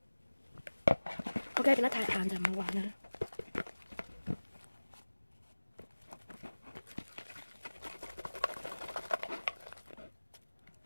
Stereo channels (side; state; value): both; inverted; correlation -1.00